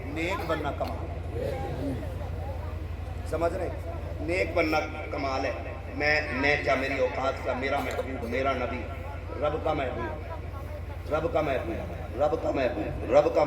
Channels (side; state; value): both; identical; correlation 1.00